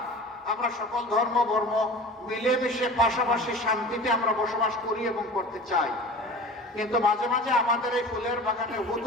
আমরা সকল ধর্ম বর্ণ মিলেমিশে পাশাপাশি শান্তিতে আমরা বসবাস করি এবং করতে চাই। কিন্তু মাঝে মাঝে আমাদের এই ফুলের বাগানে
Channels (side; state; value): both; normal; correlation 0.38